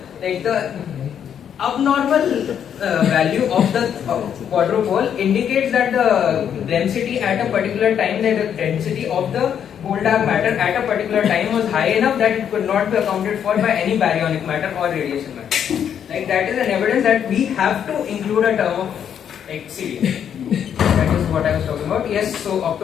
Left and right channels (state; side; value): quieter; right; 8.7 dB